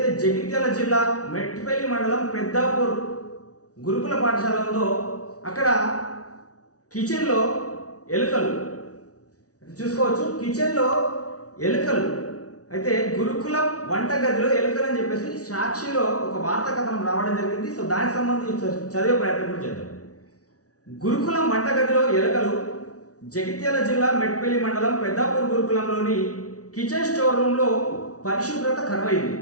జగిత్యాల జిల్లా మెట్టిపల్లి మండలం పెద్దాపూర్ గురుకుల పాఠశాల ఉందో అక్కడ కిచెన్లో ఎలుకలు చూసుకోవచ్చు. కిచెన్లో ఎలుకలు అయితే గురుకులం వంటగదిలో ఎలుకలు అని చెప్పేసి సాక్షిలో ఒక వార్తా కథనం రావడం జరిగింది. సో దానికి సంబంధించి చదివే ప్రయత్నం కూడా చేద్దాం. గురుకులం వంటగదిలో ఎలుకలు. జగిత్యాల జిల్లా మెట్టిపల్లి మండలం పెద్దాపూర్ గురుకులంలోని కిచెన్ స్టోర్ రూమ్లో పరిశుభ్రత కరువైంది.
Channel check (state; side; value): late; right; 0.67 ms